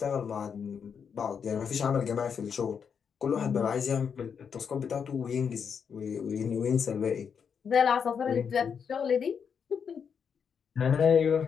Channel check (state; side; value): quieter; right; 6.9 dB